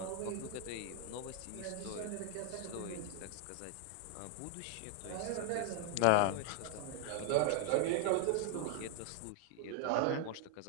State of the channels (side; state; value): both; different; correlation 0.00